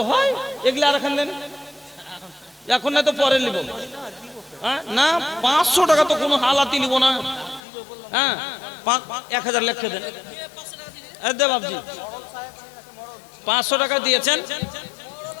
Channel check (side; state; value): right; drops out; at 7.6 s